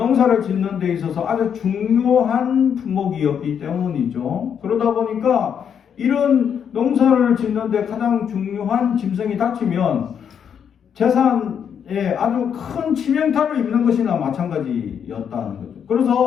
짓는 데 있어서 아주 중요한 품목이었기 때문이죠. 그러다 보니까 이런 농사를 짓는 데 가장 중요한 짐승이 다치면 재산에 아주 큰 치명타를 입는 것이나 마찬가지였다는 거죠.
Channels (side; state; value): right; quieter; 7.9 dB